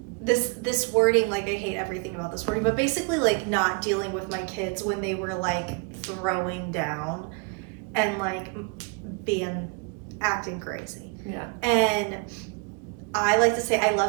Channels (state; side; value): quieter; left; 32.8 dB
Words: this wording, like I hate everything about this wording, but basically like not dealing with my kids when they were like throwing down and like acting crazy. Yeah. And I like to say, I